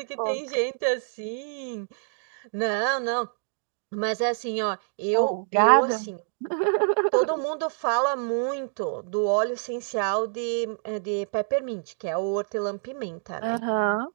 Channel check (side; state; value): left; silent; digital silence